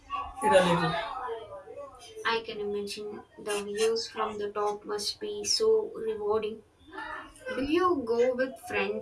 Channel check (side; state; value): both; identical; correlation 1.00